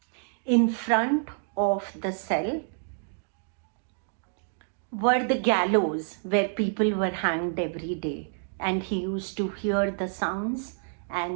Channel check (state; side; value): silent; left; digital silence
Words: In front of the cell were the gallows where people were hanged every day, and he used to hear the sounds